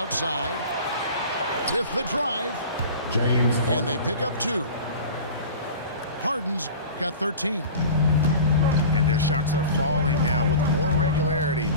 with the drive. James And they pick up 2. Harden's got 13. And their shots are falling now with more regularity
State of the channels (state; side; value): inverted; both; correlation -0.36